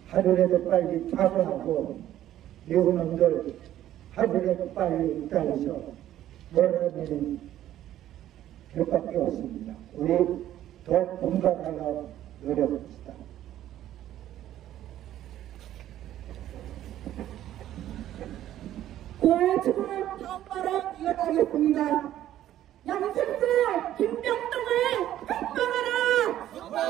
하루라도 빨리 타고하고 미국 놈들 하루라도 빨리 있다해서 몰아내는 것밖에 없습니다. 우리 더 공감하려 노력합시다. 지금 다음 발언 이어가겠습니다. 양승수 김병동을 석방하라!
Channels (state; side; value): quieter; left; 12.5 dB